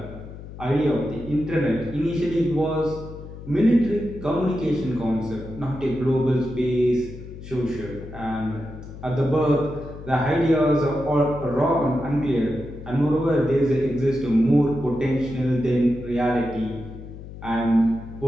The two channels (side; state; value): left; noise; hum, 13 dB below the sound